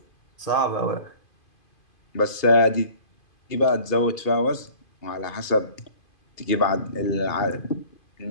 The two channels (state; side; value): late; right; 2.5 ms